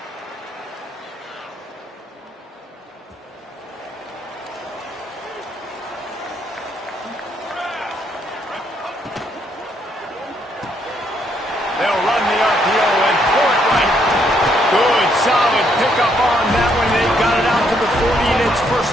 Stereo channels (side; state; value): both; normal; correlation 0.72